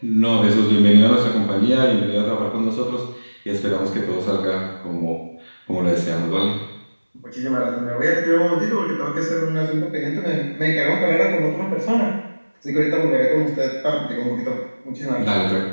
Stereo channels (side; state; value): both; inverted; correlation -1.00